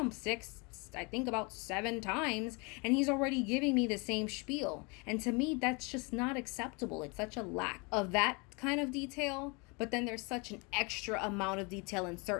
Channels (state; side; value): quieter; right; 30.4 dB